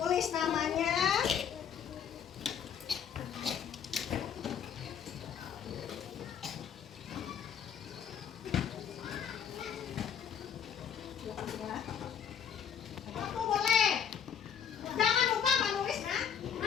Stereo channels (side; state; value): right; quieter; 8.0 dB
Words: namanya, aku boleh. Jangan lupa menulis